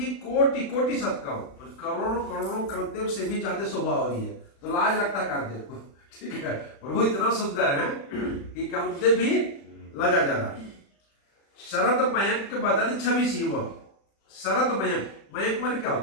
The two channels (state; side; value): late; right; 36 ms